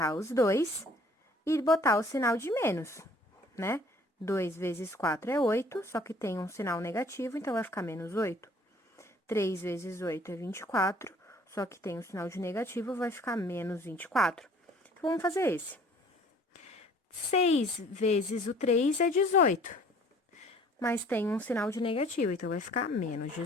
os dois e botar o sinal de menos, né? 2 vezes 4 é 8, só que tem um sinal negativo, então vai ficar menos 8. 3 vezes 8 é 24, só que tem um sinal de negativo, vai ficar menos 24. Então, vamos fazer esse. 6 vezes o 3 é 18, mas tem um sinal de negativo, então vai ficar menos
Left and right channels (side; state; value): both; normal; correlation 0.54